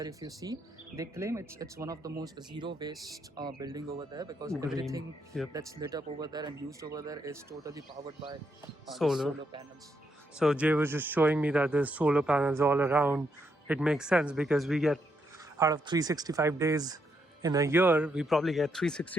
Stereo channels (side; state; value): both; normal; correlation 0.78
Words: if you see, they claim it's one of the most zero waste building over there because Green. everything Yep. that's lit up over there and used over there is totally powered by the Solar. solar panels. So Jay was just showing me that there's solar panels all around. It makes sense because we get out of 365 days in a year, we probably get